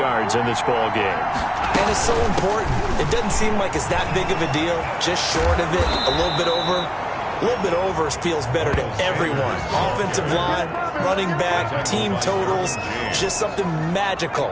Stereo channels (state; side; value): identical; both; correlation 1.00